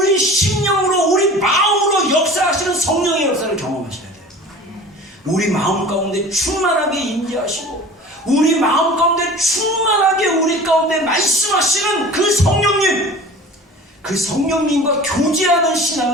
심령으로 우리 마음으로 역사하시는 성령의 역사를 경험하셔야 돼요. 우리 마음 가운데 충만하게 임재하시고 우리 마음 가운데 충만하게 우리 가운데 말씀하시는 그 성령님, 그 성령님과 교제하는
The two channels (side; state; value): both; normal; correlation 0.41